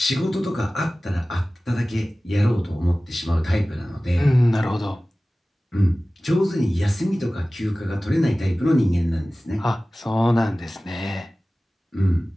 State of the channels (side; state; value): both; normal; correlation 0.97